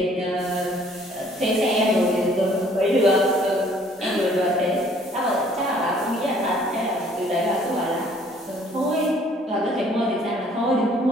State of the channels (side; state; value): both; normal; correlation 0.59